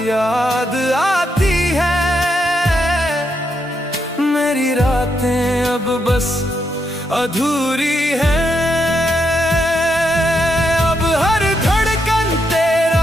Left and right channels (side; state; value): both; normal; correlation 0.80